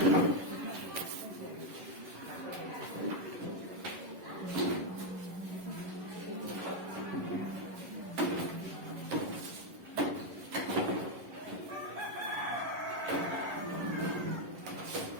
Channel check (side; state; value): left; late; 11 ms